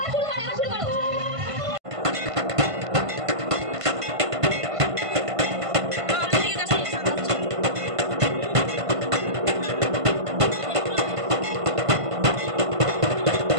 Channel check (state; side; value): late; left; 1.5 ms